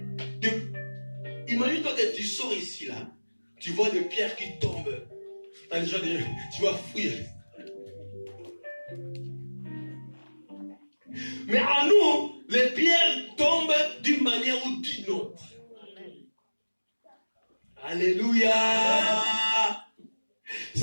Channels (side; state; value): both; inverted; correlation -1.00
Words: Imagine-toi que tu sors ici, là. Tu vois des pierres qui tombent. Tu vas fuir. Mais à nous, les pierres tombent d'une manière ou d'une autre. Alléluia.